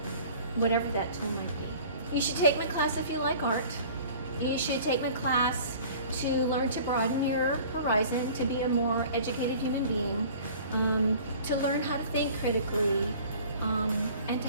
whatever that tool might be. You should take my class if you like art. You should take my class to learn to broaden your horizon, to be a more educated human being, to learn how to think critically, and to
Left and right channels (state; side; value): inverted; both; correlation -0.47